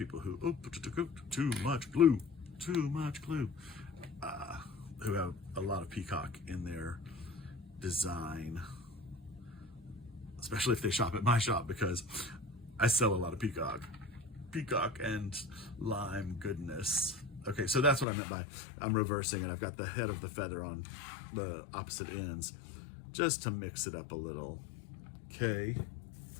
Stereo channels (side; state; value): right; drops out; at 18.1 s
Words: who, too much glue, who have a lot of peacock in their design, especially if they shop at my shop, because I sell a lot of peacock and lime goodness. Okay, so that's what I meant by I'm reversing, and I've got the head of the feather on the opposite ends just to mix it up a little. Okay,